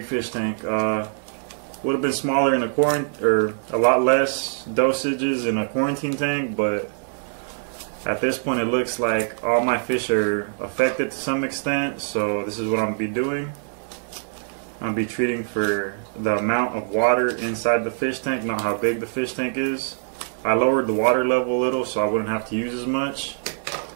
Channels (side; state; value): left; silent; digital silence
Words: fish tank. Would have been smaller in a or a lot less dosages in a quarantine tank, but at this point it looks like all my fish are affected to some extent, so this is what I'm going to be doing. I'm going to be treating for the amount of water inside the fish tank, not how big the fish tank is. I lowered the water level a little so I wouldn't have to use as much,